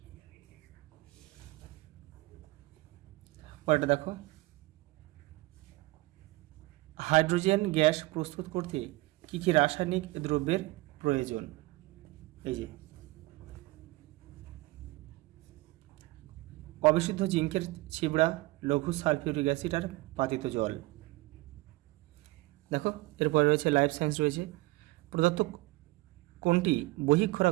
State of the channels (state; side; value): quieter; left; 21.1 dB